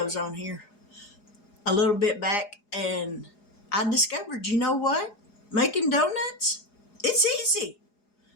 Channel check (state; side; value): late; right; 4.8 ms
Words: on here a little bit back, and I discovered, you know what? Making donuts, it's easy.